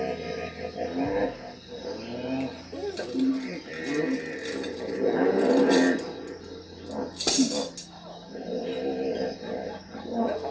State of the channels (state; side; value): identical; both; correlation 1.00